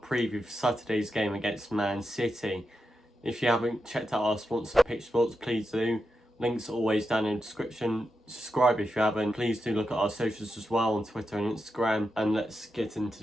for Saturday's game against Man City. If you haven't checked out our sponsor Pitch Sports, please do. Links are always down in the description. Subscribe if you haven't. Please do look at our socials as well on Twitter and Instagram. And let's get into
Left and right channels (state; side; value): normal; both; correlation 0.88